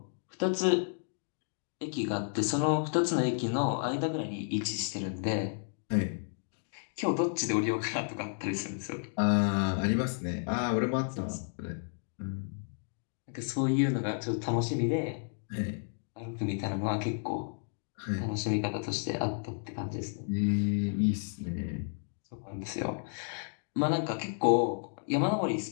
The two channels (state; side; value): silent; right; digital silence